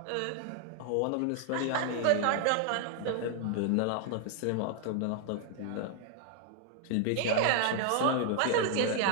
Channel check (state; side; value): different; both; correlation 0.00